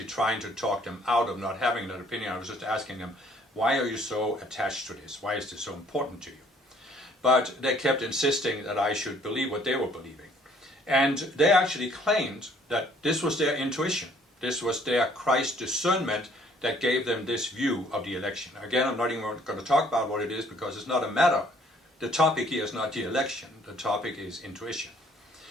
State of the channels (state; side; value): normal; both; correlation 0.60